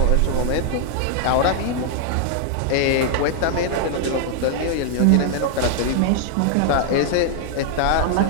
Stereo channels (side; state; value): both; different; correlation -0.01